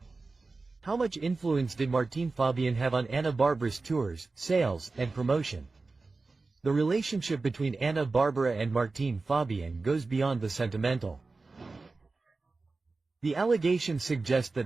How much influence did Martín Fabián have on Ana Barbara's tours, sales, and promotion? The relationship between Ana Barbara and Martín Fabián goes beyond the sentimental. The allegations suggest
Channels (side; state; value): left; quieter; 3.7 dB